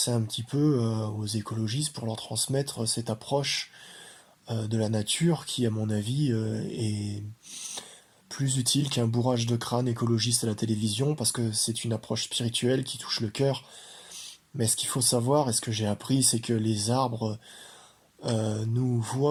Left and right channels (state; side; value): identical; both; correlation 1.00